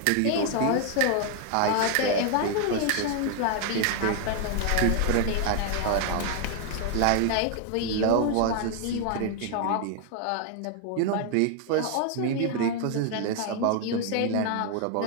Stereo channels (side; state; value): both; different; correlation 0.00